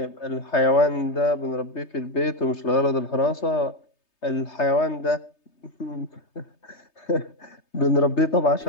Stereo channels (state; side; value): late; right; 3.3 ms